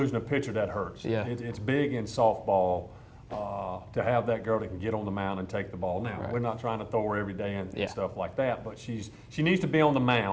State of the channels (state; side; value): identical; both; correlation 1.00